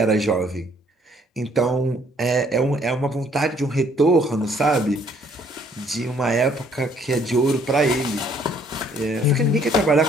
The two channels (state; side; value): normal; both; correlation 0.63